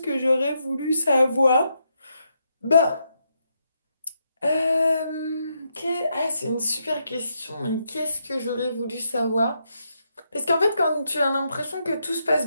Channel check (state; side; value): inverted; both; correlation -0.80